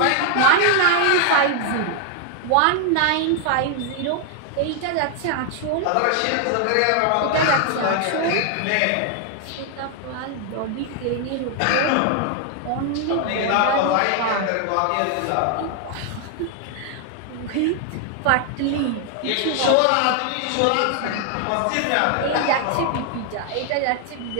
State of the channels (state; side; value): different; both; correlation 0.00